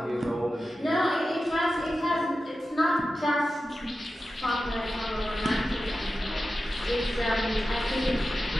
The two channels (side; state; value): both; normal; correlation 0.93